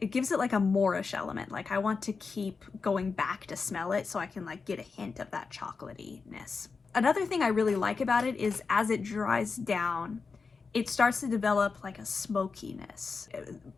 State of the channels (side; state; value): right; quieter; 4.8 dB